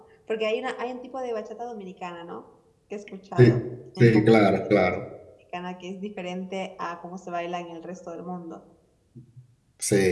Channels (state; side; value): identical; both; correlation 1.00